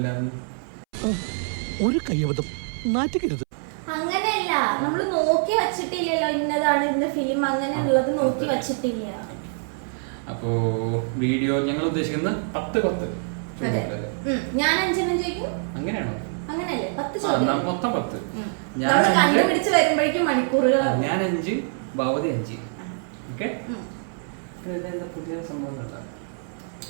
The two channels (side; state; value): left; silent; 61 dB below the other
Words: അങ്ങനെയല്ല, നമ്മള് നോക്കി വെച്ചിട്ടില്ലല്ലോ ഇന്നതാണ് ഇന്ന ഫിലിം, അങ്ങനെയുള്ളത് നോക്കി വെച്ചിട്ടില്ല. അപ്പോ വീഡിയോ ഞങ്ങൾ ഉദ്ദേശിക്കുന്നത് 10 ഞാൻ 5 ചോദിക്കും. അങ്ങനെയാണോ? അങ്ങനെയല്ലേ? 10 മൊത്തം 10. കണ്ടുപിടിച്ച് വരുമ്പോഴേക്കും മണിക്കൂറുകൾ. ഞാൻ 5, ഭവതി 5. ഓക്കെ. പുതിയ സംഭവം